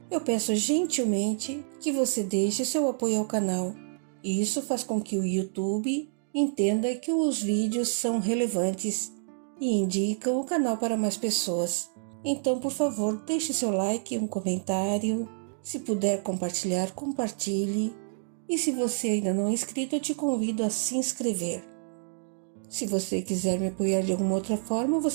eu peço gentilmente que você deixe seu apoio ao canal. E isso faz com que o YouTube entenda que os vídeos são relevantes e indicam o canal para mais pessoas. Então, por favor, deixe seu like, um comentário. Se puder compartilhar, compartilhe. E se você ainda não é inscrito, eu te convido a se inscrever. Se você quiser me apoiar de alguma outra forma,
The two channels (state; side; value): silent; left; digital silence